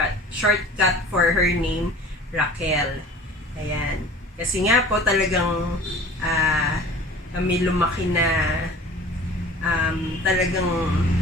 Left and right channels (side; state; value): both; normal; correlation 0.43